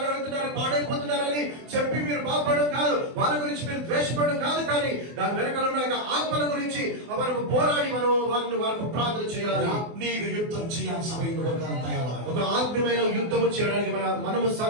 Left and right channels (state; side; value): late; left; 24 ms